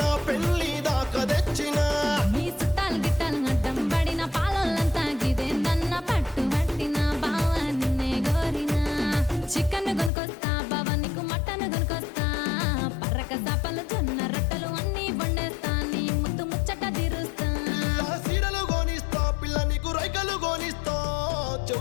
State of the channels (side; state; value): right; drops out; at 10.1 s